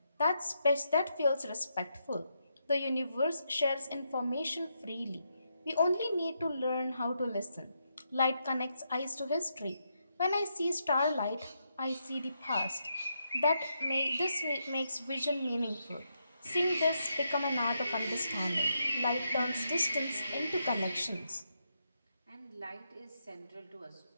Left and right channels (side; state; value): both; inverted; correlation -0.81